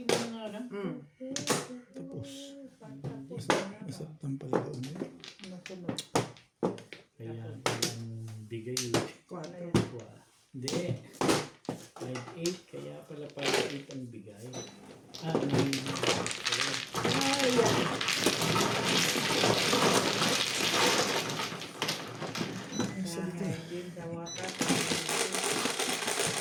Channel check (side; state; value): both; identical; correlation 1.00